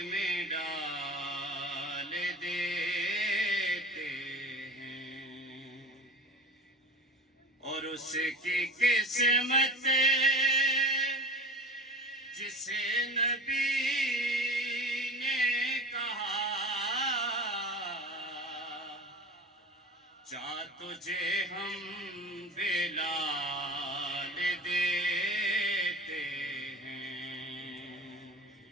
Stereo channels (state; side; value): normal; both; correlation 0.35